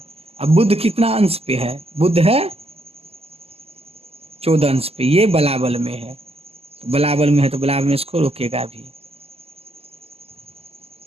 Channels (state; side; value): late; left; 0.29 ms